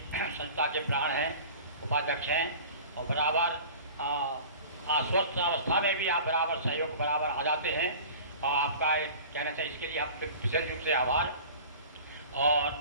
संस्था के प्राण हैं, उपाध्यक्ष हैं और बराबर अस्वस्थ अवस्था में भी आप बराबर सहयोग बराबर आ जाते हैं और आपका एक कहना चाहिए, इसके लिए आपके विशेष रूप से आभार।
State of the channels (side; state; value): both; inverted; correlation -0.40